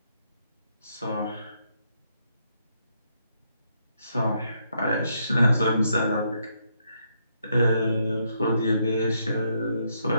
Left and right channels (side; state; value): both; inverted; correlation -0.76